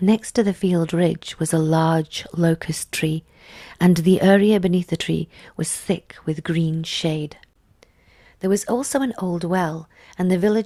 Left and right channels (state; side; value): identical; both; correlation 1.00